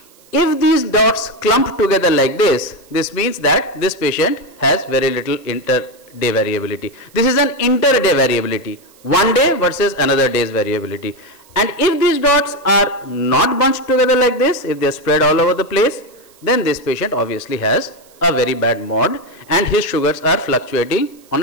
If these dots clump together like this, this means that this patient has very little inter-day variability. This is an inter-day variability, one day versus another day's variability. And if these dots are not bunched together like this, if they are spread all over the place, then this patient obviously has a very bad mod and his sugars are fluctuating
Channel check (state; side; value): noise; right; hiss, 28 dB below the sound